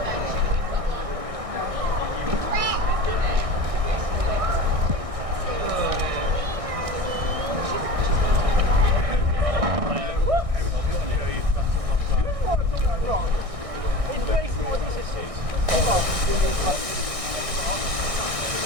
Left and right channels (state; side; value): late; left; 1.6 ms